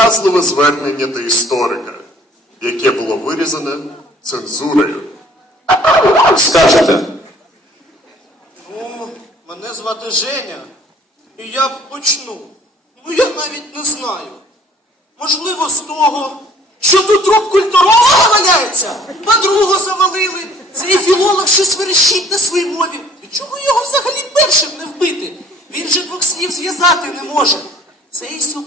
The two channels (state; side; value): normal; both; correlation 0.56